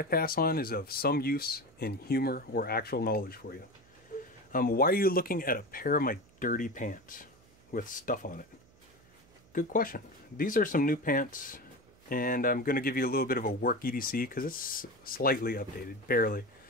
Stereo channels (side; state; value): right; noise; hum, 29 dB below the sound